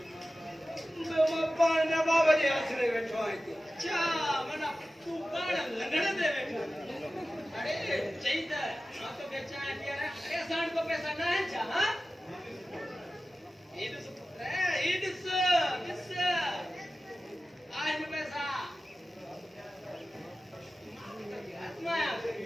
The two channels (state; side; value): normal; both; correlation 0.95